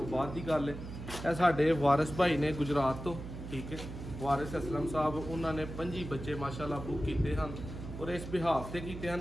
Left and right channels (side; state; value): right; noise; hum, 9 dB below the sound